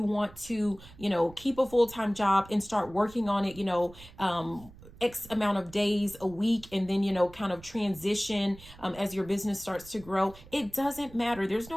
want to, keep a full-time job and start working on it, X amount of days a week, and then, kind of transition as your business starts to grow. It doesn't matter. There's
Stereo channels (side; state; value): right; noise; rumble, 20 dB below the sound